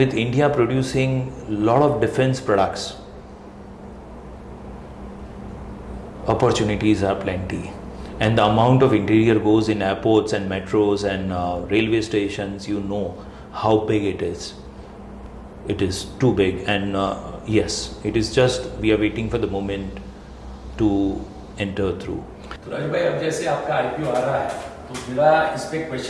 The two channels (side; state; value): both; identical; correlation 1.00